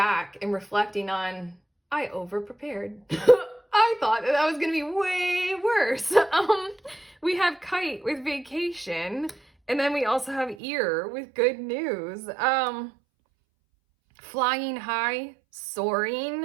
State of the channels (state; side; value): drops out; left; at 10.6 s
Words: and reflecting on, I over-prepared. I thought that was going to be way worse. We have kite with vacation, and then we also have ear with good news. Flying high,